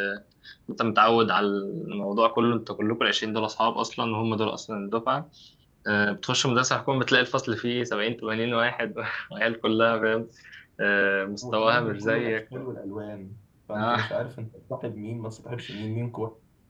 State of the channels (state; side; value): identical; both; correlation 1.00